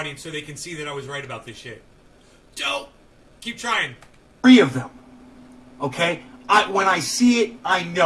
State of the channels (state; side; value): identical; both; correlation 1.00